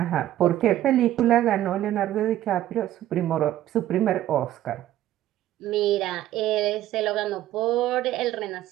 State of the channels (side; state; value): left; quieter; 13.3 dB